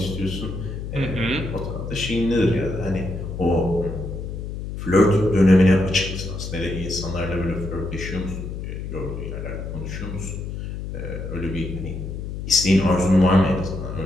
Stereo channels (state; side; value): noise; left; hum, 7 dB below the sound